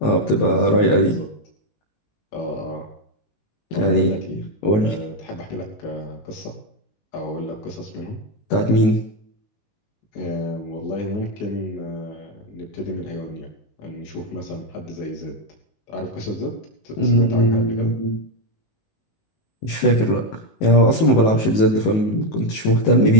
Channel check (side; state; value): right; late; 19 ms